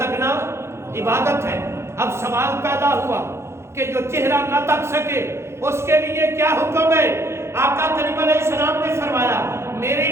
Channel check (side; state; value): left; late; 0.13 ms